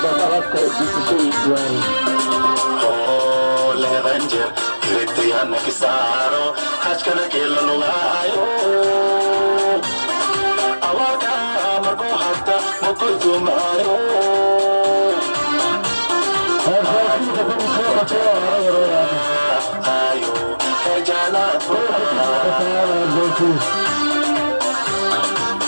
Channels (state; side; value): inverted; both; correlation -1.00